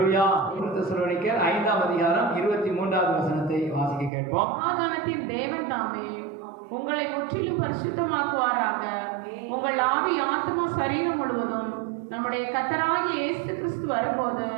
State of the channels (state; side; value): drops out; left; at 4.1 s